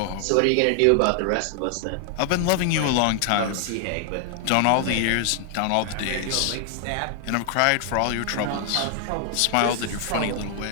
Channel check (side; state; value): both; different; correlation 0.00